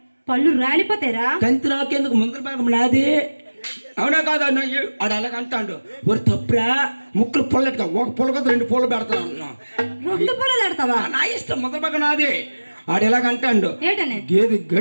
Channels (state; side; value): inverted; both; correlation -1.00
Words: పళ్ళు రాలిపోతారా. తంతి నాకెందుకు, ముందల భాగం నాది. అవునా కాదు ఆడు అలాగ అంటాడు, ఒరి తప్పురా ముక్కులు పుల్లట్టుగా ఒక పుల్ల కదా 2 పూలు పెడతాను. 2 పూలు పెడతావా? నా ఇష్టం, ముందల భాగం నాది. ఆడు ఎలాగ అంటాడు, గేదె